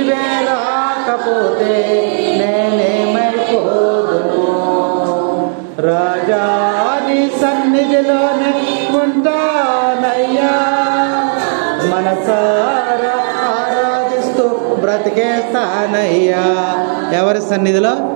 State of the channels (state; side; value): silent; left; digital silence